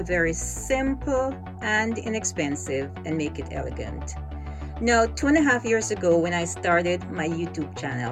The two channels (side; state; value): both; identical; correlation 1.00